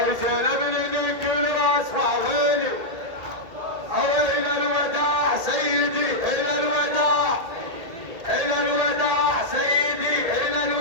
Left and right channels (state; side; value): late; left; 1.8 ms